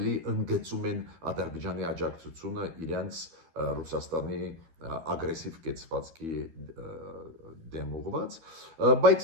ընդգծում են Ադրբեջանի աջակցությունը իրենց Ռուսաստանի ագրեսիվ կեցվածքի դեմ ուղղված,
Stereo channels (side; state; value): left; late; 12 ms